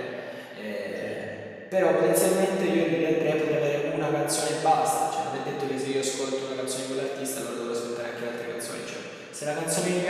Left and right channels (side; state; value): both; identical; correlation 1.00